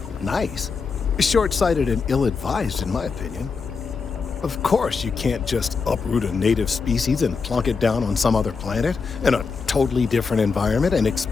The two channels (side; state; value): right; quieter; 5.0 dB